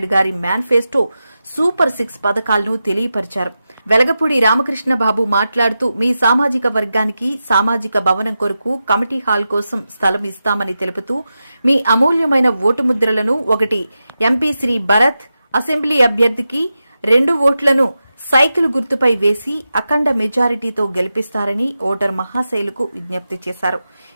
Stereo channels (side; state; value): both; inverted; correlation -0.91